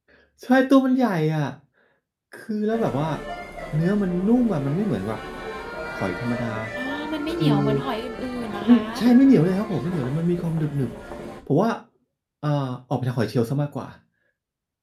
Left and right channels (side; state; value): both; identical; correlation 1.00